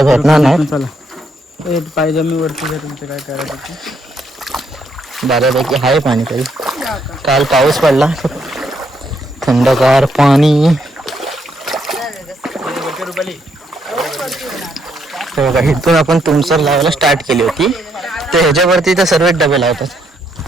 भेटणार नाही. पाहिजे मी वरती तुमचं काय करायचं. बऱ्यापैकी आहे पाणी तरी. काल पाऊस पडला, थंडगार पाणी. बघा इथून आपण तुमसर लावायला स्टार्ट केली होती, तर ह्याच्यावरती तर सर्व डबे लावतात.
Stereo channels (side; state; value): both; normal; correlation 0.74